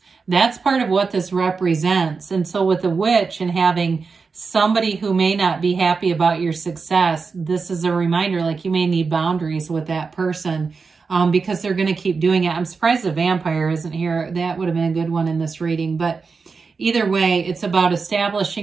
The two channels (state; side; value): quieter; left; 4.8 dB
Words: That's part of what this represents. And so with the witch and having somebody who may not be happy about your success, this is a reminder, like you may need boundaries with that person. Because they're going to keep doing it. I'm surprised the vampire isn't here. That would have been a good one in this reading. But either way, it's about